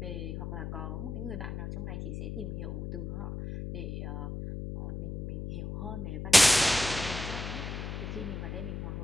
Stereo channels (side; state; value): left; noise; hum, 5 dB below the sound